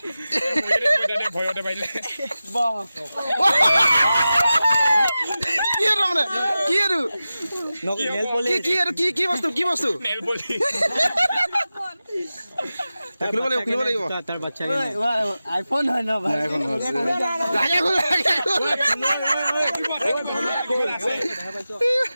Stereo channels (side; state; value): both; inverted; correlation -0.94